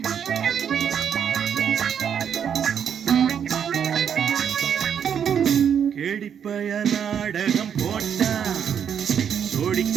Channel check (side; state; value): left; quieter; 8.2 dB